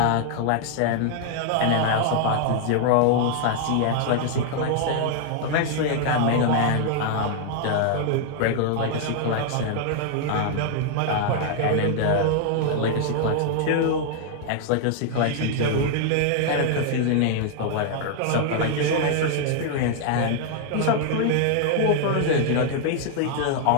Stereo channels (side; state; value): both; different; correlation -0.01